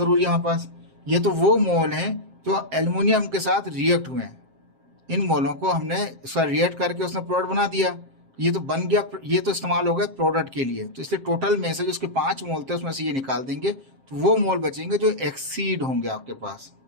है हमारे पास। ये तो वो मोल हैं जो एल्युमिनियम के साथ रिएक्ट हुए हैं, इन मोलों को हमने उसका रिएक्ट करके उसने प्रोडक्ट बना दिया, ये तो बन गया, ये तो इस्तेमाल हो गया प्रोडक्ट के लिए। तो इसलिए टोटल में से जो उसके 5 मोल थे उसमें से ये निकाल देंगे, तो वो मोल बचेंगे जो एक्सीड होंगे आपके पास।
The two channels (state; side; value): late; left; 7.5 ms